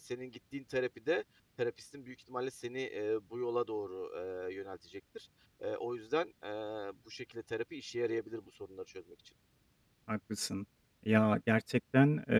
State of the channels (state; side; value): identical; both; correlation 1.00